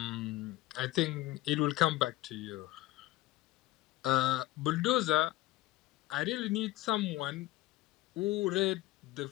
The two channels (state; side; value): quieter; right; 17.6 dB